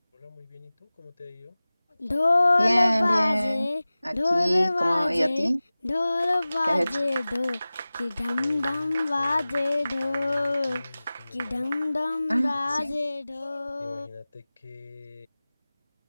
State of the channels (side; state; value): both; inverted; correlation -0.98